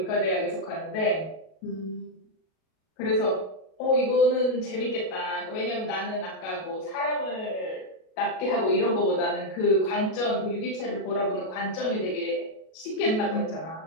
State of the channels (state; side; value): late; right; 37 ms